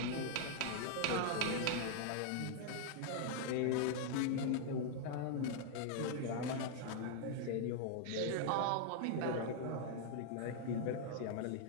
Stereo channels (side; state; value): both; different; correlation -0.01